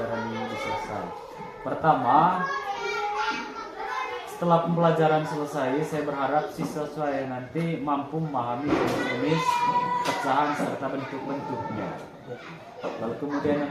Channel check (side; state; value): both; identical; correlation 1.00